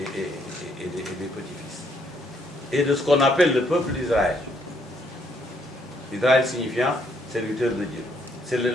des petits-fils. Et de ce qu'on appelle le peuple d'Israël. Israël signifiant serviteur de Dieu. C'est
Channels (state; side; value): normal; both; correlation 0.70